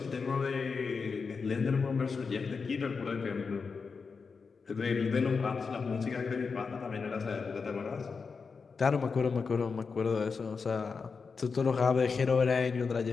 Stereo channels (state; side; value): quieter; right; 5.1 dB